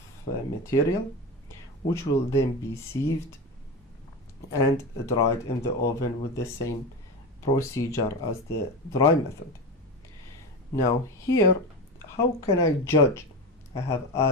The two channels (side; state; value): both; normal; correlation 0.22